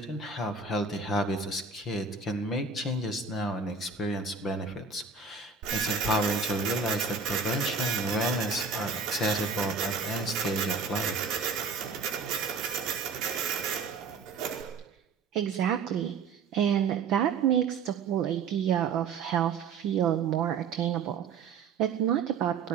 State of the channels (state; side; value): quieter; left; 5.0 dB